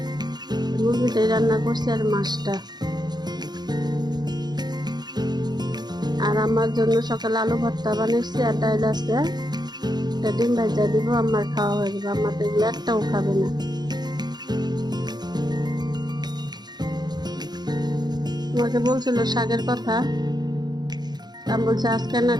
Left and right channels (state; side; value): late; left; 0.20 ms